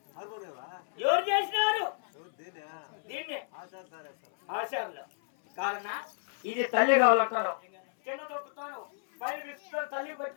ఎవరు చేసినారు దీన్ని? ఆచార్యులు కాదన్నా ఇది తల్లి కావాలంటారు. చిన్న దొక్కుతాను పైన విసుకుతాను తల్లి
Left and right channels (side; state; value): right; silent; 57 dB below the other